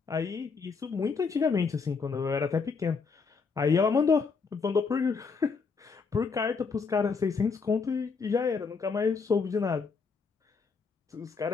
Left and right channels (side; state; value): right; quieter; 5.0 dB